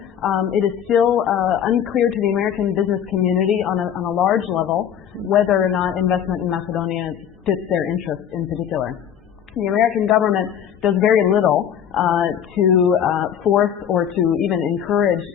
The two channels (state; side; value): quieter; right; 9.1 dB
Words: it is still unclear to the American business community on a large level whether or not investment in Macedonia fits their interests in particular. The American government does very little to force or to even encourage